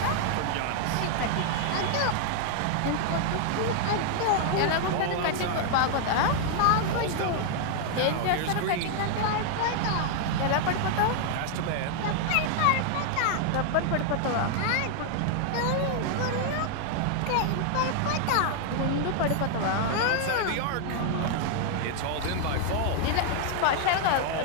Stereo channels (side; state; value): both; different; correlation 0.00